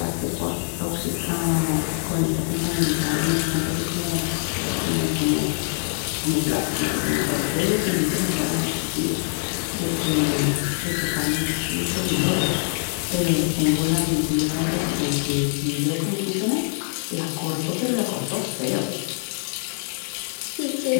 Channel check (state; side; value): silent; right; 56 dB below the other